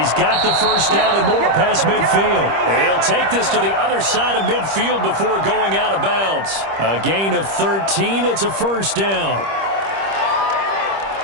got the 1st down and more past midfield. He'll take this to the other side of midfield before going out of bounds. A gain of 13. It's a 1st down.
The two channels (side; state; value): left; late; 25 ms